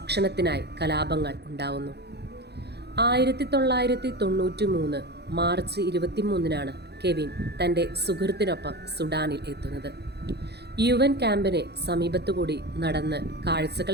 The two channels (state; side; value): late; left; 0.48 ms